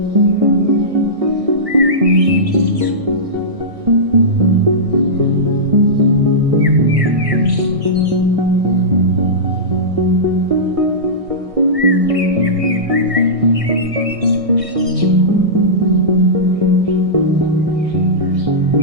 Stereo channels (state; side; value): late; left; 1.6 ms